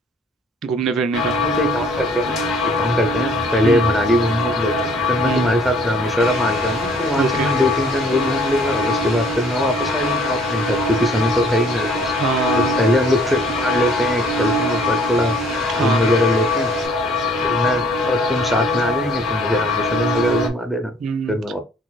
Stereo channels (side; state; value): both; normal; correlation 0.58